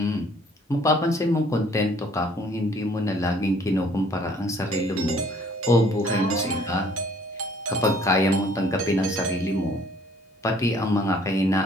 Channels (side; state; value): both; normal; correlation 0.58